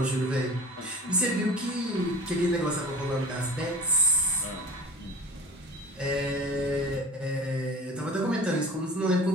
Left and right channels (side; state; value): both; normal; correlation 0.38